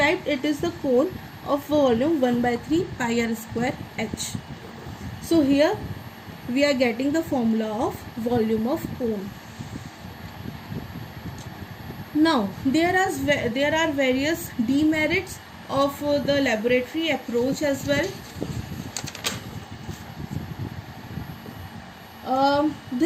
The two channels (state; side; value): identical; both; correlation 1.00